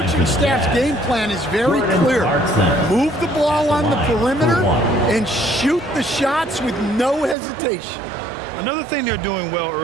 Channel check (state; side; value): drops out; left; at 7.4 s